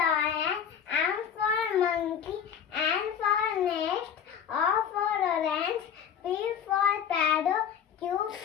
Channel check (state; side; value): quieter; right; 8.3 dB